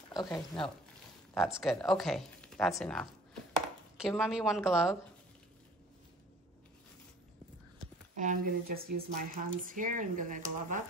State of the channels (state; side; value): normal; both; correlation 0.49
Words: Okay, no. That's good. Okay, that's enough. Give mommy 1 glove. And I'm gonna just use my hands here. I'm gonna glove up